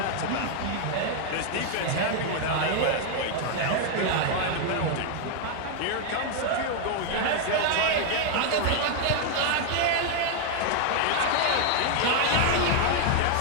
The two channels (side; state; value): both; different; correlation 0.00